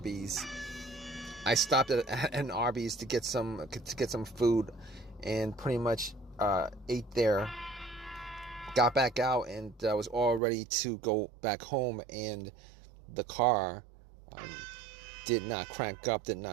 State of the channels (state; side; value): drops out; left; at 10.4 s